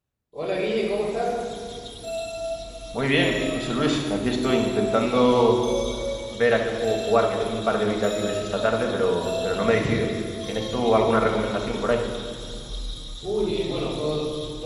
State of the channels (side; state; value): both; identical; correlation 1.00